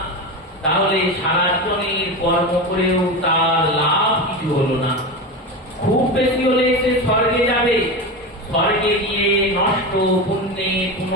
তাহলে সারা জীবনের কর্ম করেও তার লাভ কিছু হলো না। খুব বেশি হলে সে স্বর্গে যাবে, স্বর্গে গিয়ে নষ্ট পুণ্যে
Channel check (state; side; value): normal; both; correlation 0.21